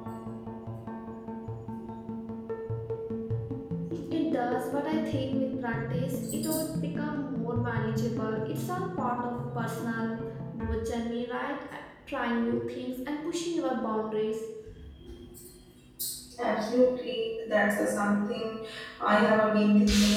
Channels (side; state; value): both; identical; correlation 1.00